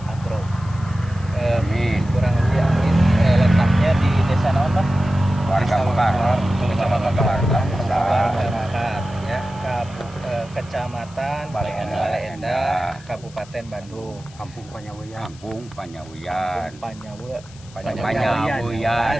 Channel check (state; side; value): noise; left; hiss, 24 dB below the sound